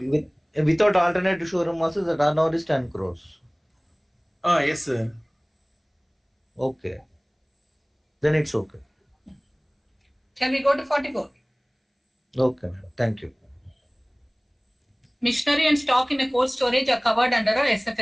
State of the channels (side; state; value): both; identical; correlation 1.00